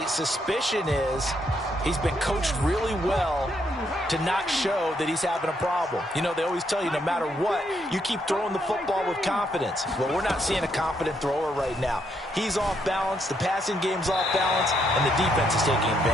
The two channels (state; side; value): normal; both; correlation 0.75